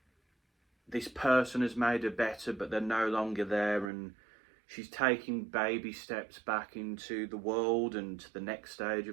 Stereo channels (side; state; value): left; drops out; at 3.9 s